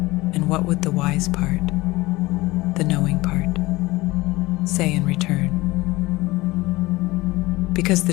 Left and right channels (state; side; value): quieter; right; 20.4 dB